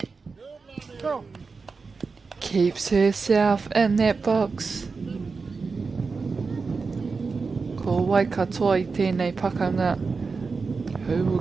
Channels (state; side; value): quieter; left; 4.6 dB